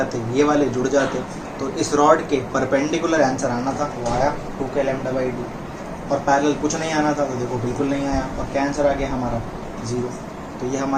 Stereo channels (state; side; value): identical; both; correlation 1.00